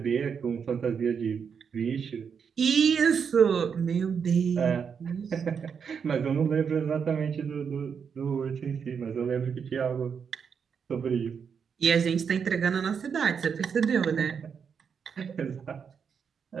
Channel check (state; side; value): quieter; left; 6.7 dB